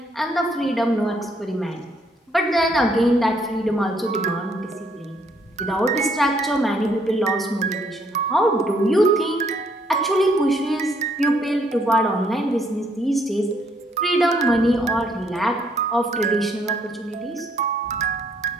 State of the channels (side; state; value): both; normal; correlation 0.68